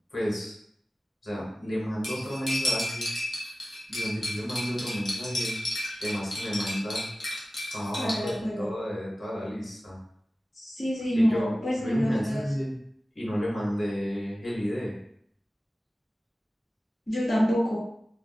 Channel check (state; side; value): normal; both; correlation 0.96